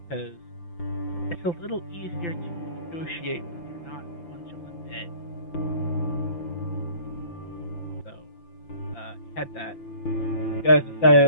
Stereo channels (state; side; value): late; right; 5.8 ms